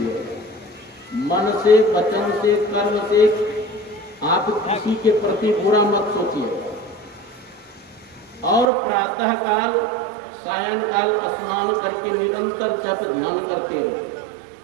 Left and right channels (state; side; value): drops out; left; at 8.7 s